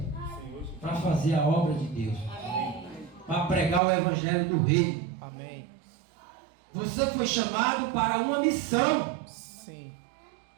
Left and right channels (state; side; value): drops out; left; at 3.8 s